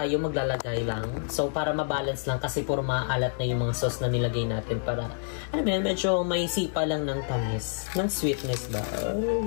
maglalagay lang. So para mabalance lang kasi puro maalat na yung mga sauce na nilagay natin para ano yan, medyo may sipa lang ng tamis. Ng sweetness ba?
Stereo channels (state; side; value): silent; right; digital silence